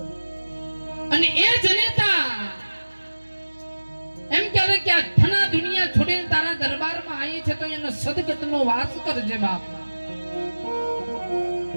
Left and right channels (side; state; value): both; inverted; correlation -1.00